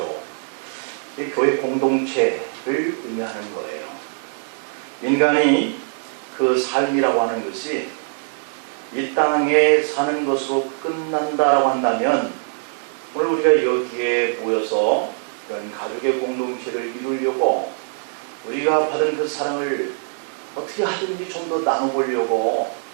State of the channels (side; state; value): left; silent; 58 dB below the other